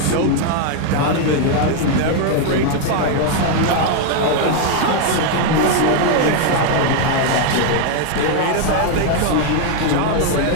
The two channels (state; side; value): different; both; correlation 0.01